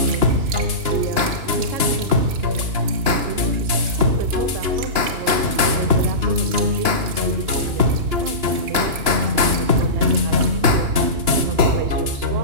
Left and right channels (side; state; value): left; late; 2.9 ms